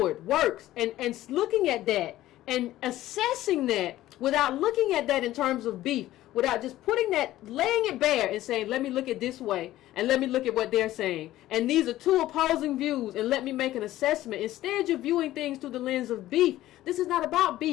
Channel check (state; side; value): quieter; right; 14.9 dB